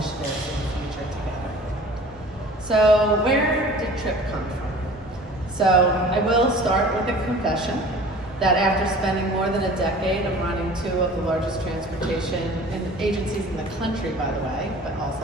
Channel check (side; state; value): both; normal; correlation 0.44